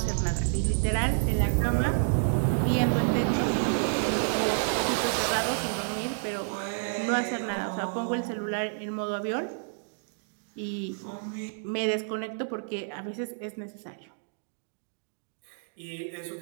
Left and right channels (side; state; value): left; silent; digital silence